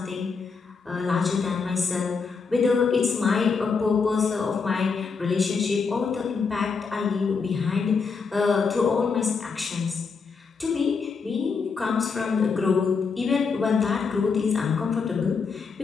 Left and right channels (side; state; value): right; quieter; 5.1 dB